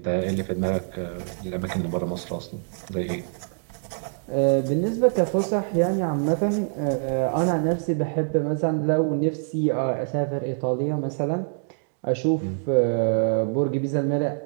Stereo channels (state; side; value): silent; left; digital silence